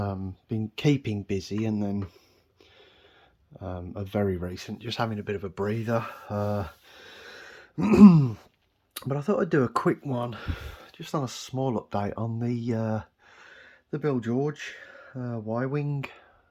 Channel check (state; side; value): identical; both; correlation 1.00